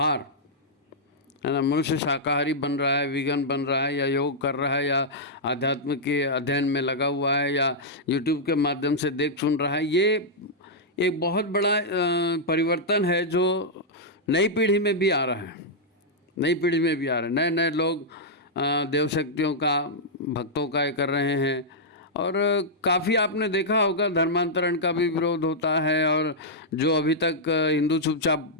है ना, मनुष्य शाकाहारी बन रहा है, वीगन बन रहा है, या योग कर रहा है, या आध्यात्म के अध्ययन में लगा हुआ है, या यूट्यूब के माध्यम से देख सुन रहा है। ये एक बहुत बड़ा परिवर्तन है जो नई पीढ़ी में भी आ रहा है, नई पीढ़ी में भी आ रहा है। नए नए लोग देव शक्तियों का, भक्तों का ये कर रहे हैं। और काफ़ी आपने देखा होगा धर्मांतरण का भी विरोध होता है, और जो अभी तक हिंदू चुपचाप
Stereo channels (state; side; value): normal; both; correlation -0.08